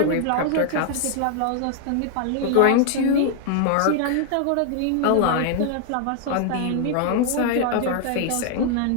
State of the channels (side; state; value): both; different; correlation 0.00